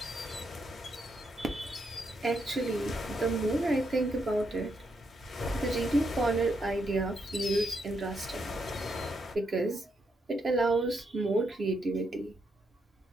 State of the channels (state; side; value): normal; both; correlation 0.79